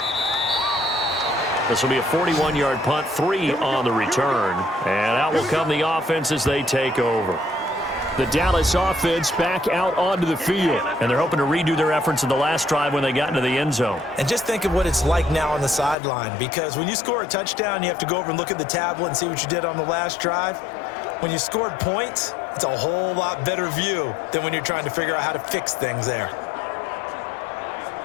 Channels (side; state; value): right; drops out; at 16.0 s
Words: This will be a 41-yard punt, 3 on the return. And out will come the offense as they take over. The Dallas offense back out onto the field. And they're hoping to redo their efforts in the last drive when they got into the end zone. And just think of what it's like now on the sideline. Because when you score a touchdown, you have to go over and look at the tablet and see what you did on the last drive. When you scored points, it's a whole lot better view than when you're trying to figure out how to fix things there.